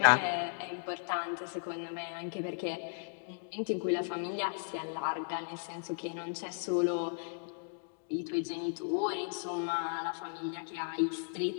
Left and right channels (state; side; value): silent; right; digital silence